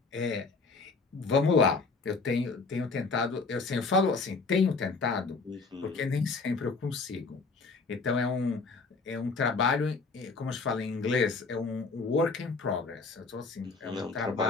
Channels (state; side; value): quieter; right; 4.2 dB